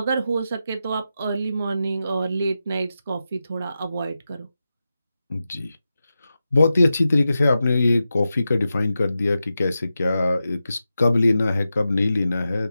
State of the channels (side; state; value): both; inverted; correlation -0.91